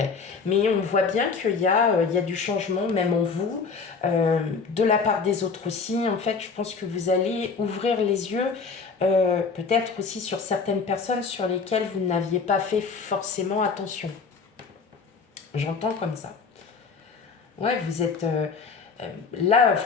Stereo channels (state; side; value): quieter; right; 5.0 dB